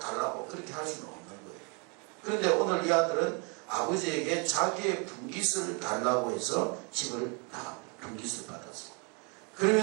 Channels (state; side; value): quieter; left; 34.0 dB